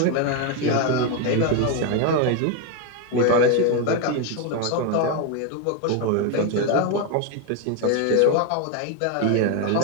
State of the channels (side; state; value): both; different; correlation 0.01